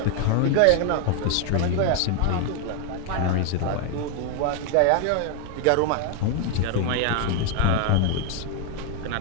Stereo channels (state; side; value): different; both; correlation 0.01